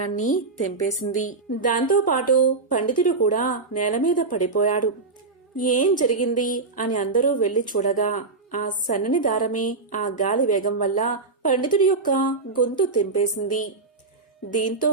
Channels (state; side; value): quieter; left; 3.9 dB